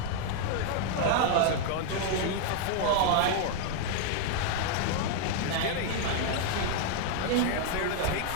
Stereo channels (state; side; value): different; both; correlation 0.00